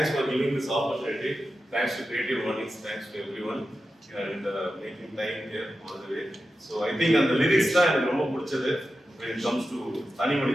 for giving this opportunity. Thanks to CreativeMornings. Thanks to everyone and making time here all the way. So I think on the lyrics தான் எனக்கு ரொம்ப பிடிச்சது when it comes to தனி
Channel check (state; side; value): normal; both; correlation 0.91